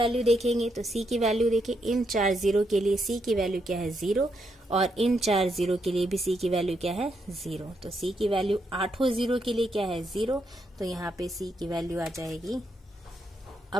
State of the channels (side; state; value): both; normal; correlation 0.79